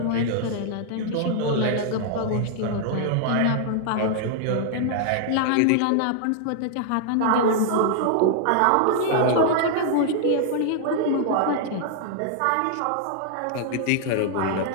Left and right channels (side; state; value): both; different; correlation 0.00